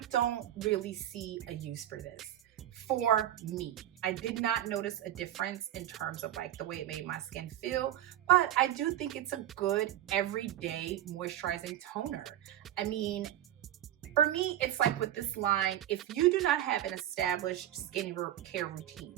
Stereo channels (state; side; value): quieter; left; 12.3 dB